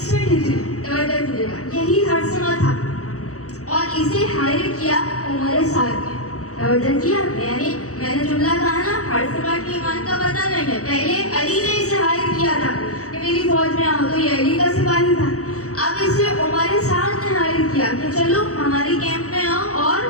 ہجری توجہ کیجیے گا یہی حرثمہ تھا اور اسے ہائر کیا عمر سعد نے. توجہ کیا, یعنی میں نے جملہ کہا نا حرثمہ کی ایمان کا پتہ نہیں ہے, پہلے علی نے اسے ہائر کیا تھا کہ میری فوج میں آؤ, تو یہ علی کا سپاہی تھا. اب اسے عمر سعد نے ہائر کیا کہ چلو ہماری کیمپ میں آؤ, اور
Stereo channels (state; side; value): late; right; 0.65 ms